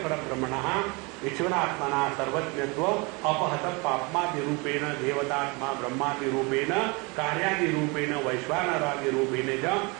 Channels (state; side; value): quieter; left; 28.4 dB